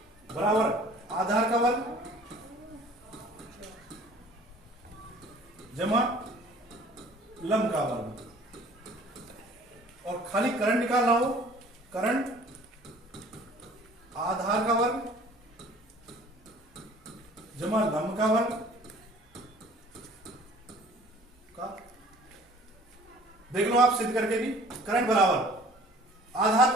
बराबर आधार का वर्ग जमा लंब का वर्ग। और खाली कर्ण निकालना हो, कर्ण आधार का वर्ग जमा लंब का वर्ग का। देख लो आप सिद्ध करके भी, कर्ण बराबर आधार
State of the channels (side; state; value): both; normal; correlation 0.51